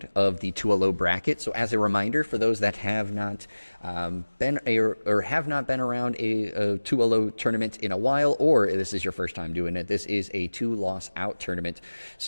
of the 2-0 bracket. So as a reminder for those that have not been around a 2-0 tournament in a while, or this is your first time doing it, this is a 2-loss out tournament.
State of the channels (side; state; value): both; inverted; correlation -1.00